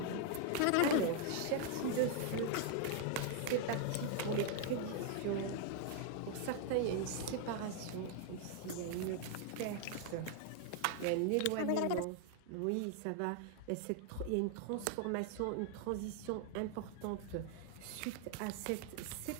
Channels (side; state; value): both; different; correlation 0.00